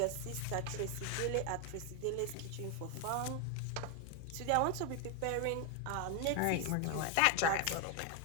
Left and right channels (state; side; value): different; both; correlation 0.01